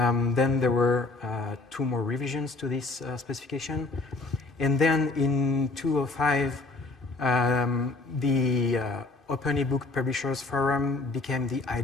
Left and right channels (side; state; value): right; quieter; 3.4 dB